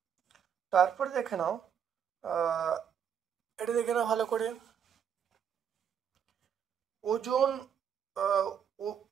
তারপরে দেখে নাও, এটা দেখে নাও ভালো করে, ওজোন,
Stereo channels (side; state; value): left; quieter; 8.1 dB